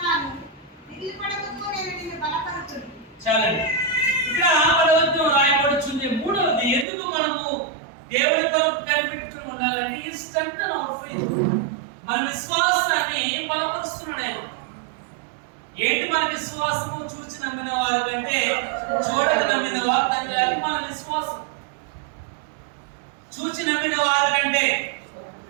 దిగులుపడకుము, నేను నిన్ను బలపరచును. చాలండి. ఇక్కడ 10వ రాయబడుతుంది. మూడవది, ఎందుకు మనము దేవుని కొరకు కనిపెట్టుకుని ఉండాలంటే ఈ స్ట్రెంగ్తెన్ అవర్ ఫెయిత్. మన విశ్వాసాన్ని బలపరుస్తున్నాడు ఆయన. ఏంటి మన విశ్వాసము? చూచి నమ్మిన వారి కంటే చూడక నమ్మిన వారు తగ్గాలి. మన విశ్వాసం చూచి నమ్మిన వారి కంటే.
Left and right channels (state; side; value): drops out; left; at 6.9 s